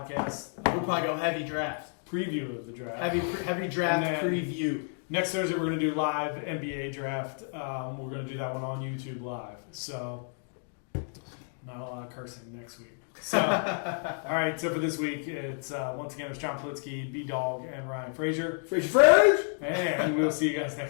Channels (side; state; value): right; silent; 56 dB below the other